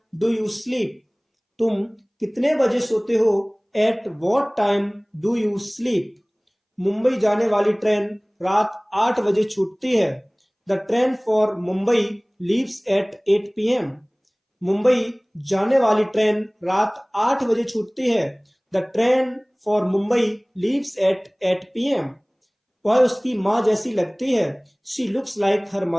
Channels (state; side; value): identical; both; correlation 1.00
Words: do you sleep? तुम कितने बजे सोते हो, at what time do you sleep? Mumbai जाने वाली ट्रेन रात 8 बजे छूटती है। The train for Mumbai leaves eight 8 p.m. Mumbai जाने वाली ट्रेन रात 8 बजे छूटती है। The train for Mumbai leaves eight 8 p.m. वह उसकी माँ जैसी लगती है, she looks like her